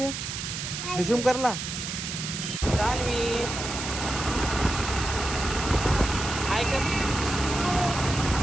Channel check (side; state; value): right; noise; hiss, 5 dB below the sound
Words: रिझ्यूम करला. सान्वी हाय कर.